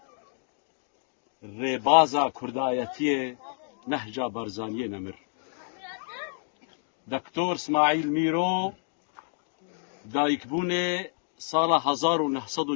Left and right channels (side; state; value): right; silent; digital silence